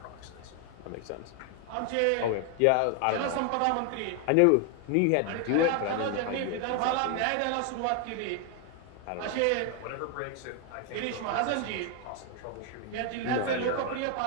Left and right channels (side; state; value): both; different; correlation 0.00